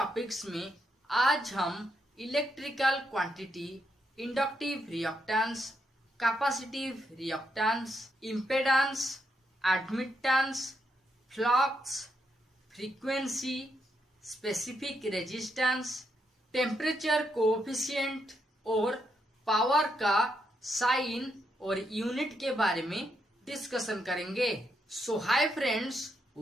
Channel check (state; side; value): normal; both; correlation 0.80